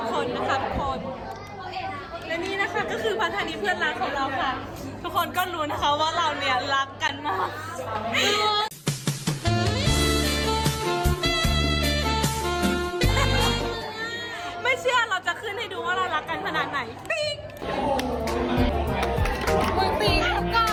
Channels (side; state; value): both; identical; correlation 1.00